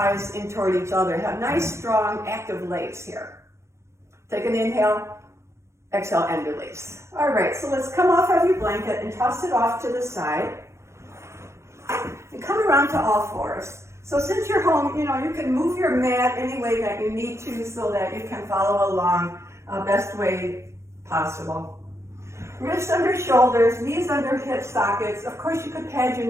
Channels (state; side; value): late; left; 0.13 ms